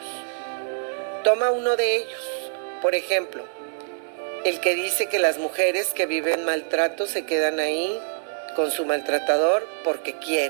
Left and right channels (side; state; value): left; silent; digital silence